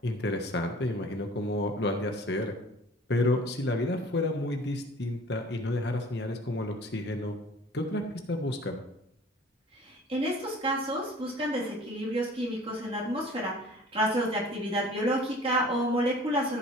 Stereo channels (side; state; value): both; normal; correlation 0.48